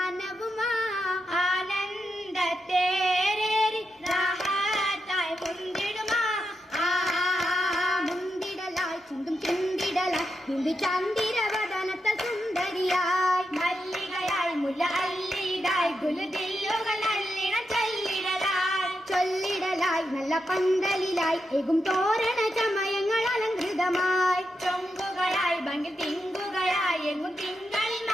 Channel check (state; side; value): normal; both; correlation 0.86